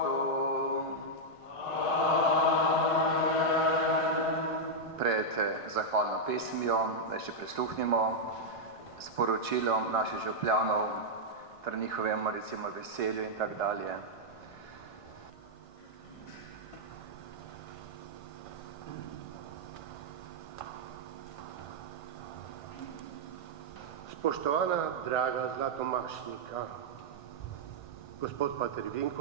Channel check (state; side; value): late; right; 1.5 ms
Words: Pred zahvalno pesmijo, da še prisluhnimo sporočilom naših župljanov, ter njihovemu recimo veselju in tak dalje. Spoštovana draga zlatomašnika, gospod pater